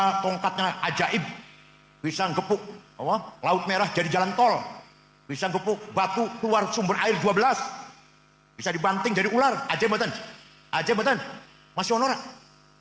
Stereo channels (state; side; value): identical; both; correlation 1.00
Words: tongkatnya ajaib, bisa gepuk laut merah jadi jalan tol, bisa gepuk batu keluar sumber air 12, bisa dibanting jadi ular. Ajaib betul masih honor,